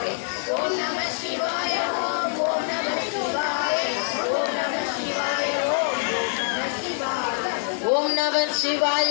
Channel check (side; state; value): right; silent; 62 dB below the other